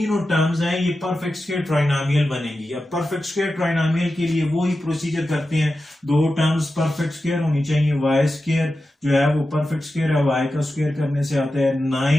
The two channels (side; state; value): both; normal; correlation 0.92